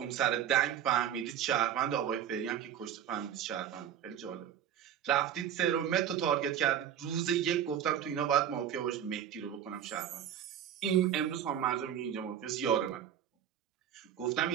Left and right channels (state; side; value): quieter; left; 9.5 dB